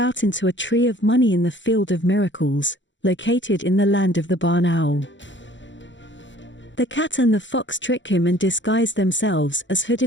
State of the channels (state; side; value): late; right; 0.54 ms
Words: into a tree of money in the Field of Miracles, located in the land of the barn owl. The cat and the fox trick him and disguise themselves as